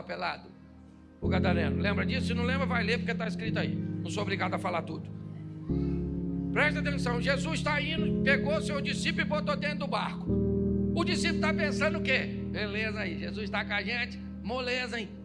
pelado, o gadareno. Lembra disso? Se não lembra, vai ler, porque está escrito aí. Não sou obrigado a falar tudo. Presta atenção, Jesus está indo, pegou seu discípulo e botou dentro do barco. O discípulo está pensando o quê? Beleza aí, Jesus está com a gente, moleza, hein?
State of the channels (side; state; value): both; identical; correlation 1.00